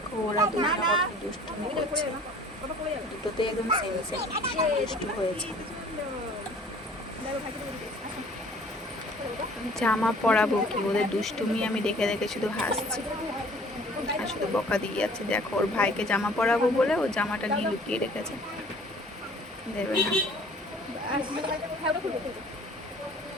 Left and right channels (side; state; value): both; normal; correlation 0.52